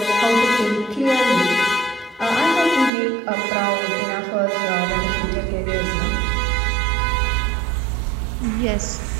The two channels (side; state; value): left; drops out; at 2.9 s